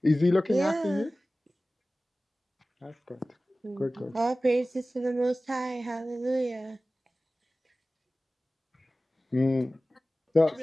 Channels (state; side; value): normal; both; correlation 0.97